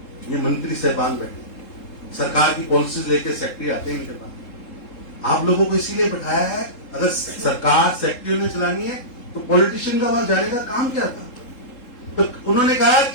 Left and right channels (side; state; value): right; late; 3.7 ms